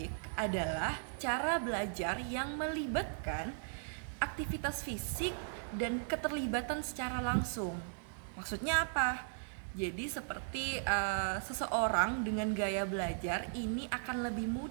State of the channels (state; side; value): silent; left; digital silence